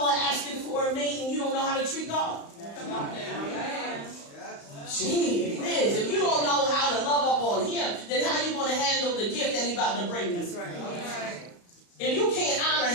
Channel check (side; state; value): right; late; 35 ms